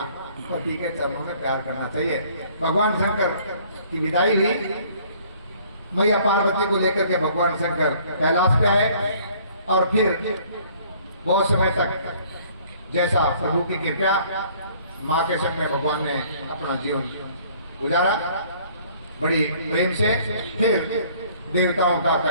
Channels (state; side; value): inverted; both; correlation -0.57